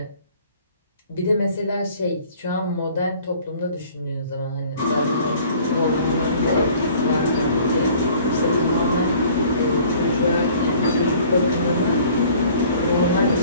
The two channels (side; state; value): both; inverted; correlation -0.52